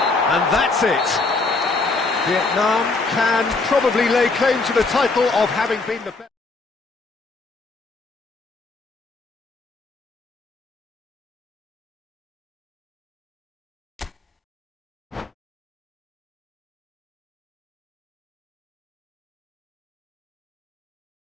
And that's it. Vietnam can probably lay claim to the title of having been the best.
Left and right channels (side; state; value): right; quieter; 3.7 dB